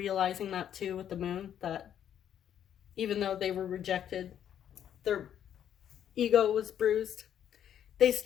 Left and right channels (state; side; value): quieter; right; 9.8 dB